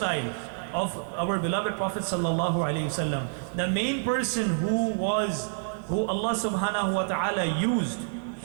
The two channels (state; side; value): silent; left; digital silence